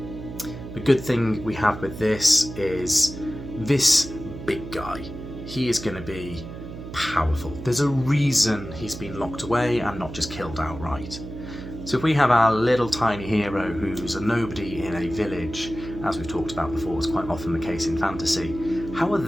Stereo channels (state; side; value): noise; right; hum, 11 dB below the sound